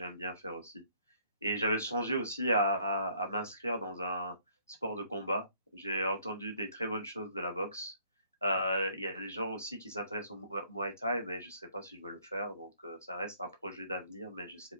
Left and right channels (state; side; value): inverted; both; correlation -0.64